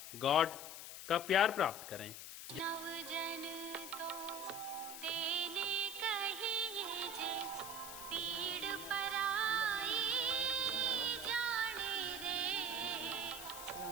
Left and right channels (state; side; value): noise; left; hiss, 9 dB below the sound